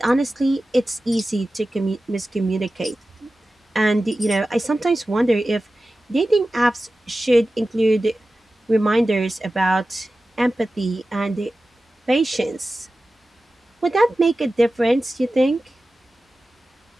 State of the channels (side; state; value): both; normal; correlation 0.95